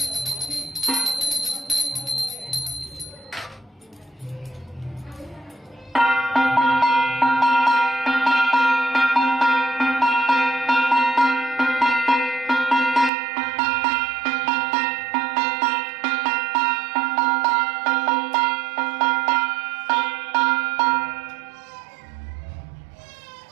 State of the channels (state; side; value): drops out; left; at 13.1 s